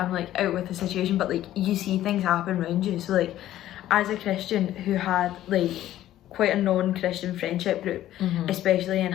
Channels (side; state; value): right; quieter; 13.3 dB